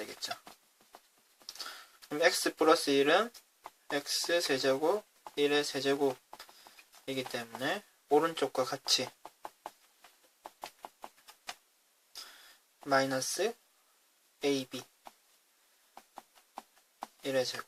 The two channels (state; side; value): identical; both; correlation 1.00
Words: 그럼 x 플러스 1은 x 세제곱 1의 세제곱이기 때문에 오른쪽과 같이 마이너스 ab 1의